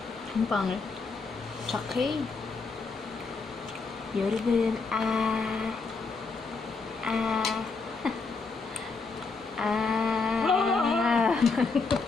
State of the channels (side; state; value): right; quieter; 4.3 dB